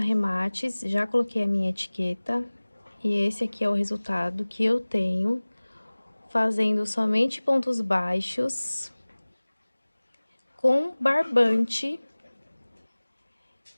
já coloquei a minha etiqueta. E esse aqui é o resultado que eu tenho, fazendo somente pontos baixos, com barbante.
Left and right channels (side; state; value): both; inverted; correlation -1.00